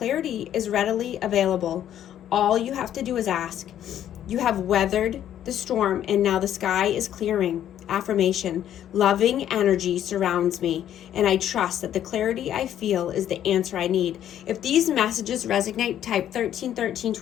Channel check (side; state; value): right; quieter; 10.9 dB